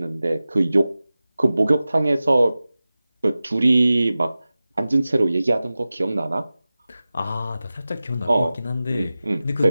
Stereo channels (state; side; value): inverted; both; correlation -0.96